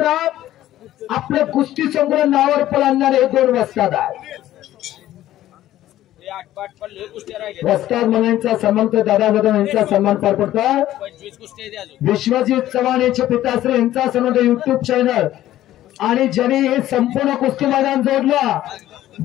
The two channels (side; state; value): right; quieter; 13.7 dB